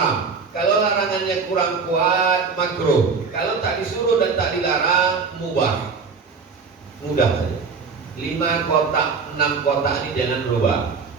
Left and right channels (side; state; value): left; quieter; 5.0 dB